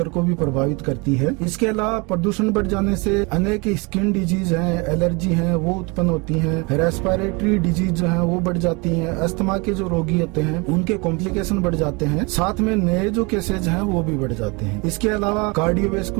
को भी प्रभावित करती है। इसके अलावा प्रदूषण बढ़ जाने से अनेक स्किन डिजीज हैं, एलर्जी हैं, वो उत्पन्न होती हैं। रेस्पिरेटरी डिजीज जो हैं वो बढ़ जाती हैं। अस्थमा के जो रोगी होते हैं उनके कॉम्प्लिकेशन बढ़ जाते हैं। साथ में नए जो केसेज हैं वो भी बढ़ जाते हैं। इसके अलावा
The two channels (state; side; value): quieter; left; 28.4 dB